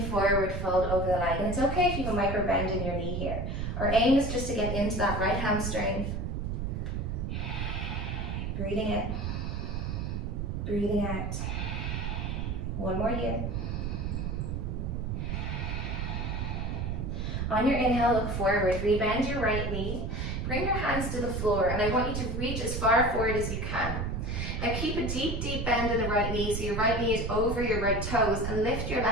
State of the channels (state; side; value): noise; right; rumble, 2 dB below the sound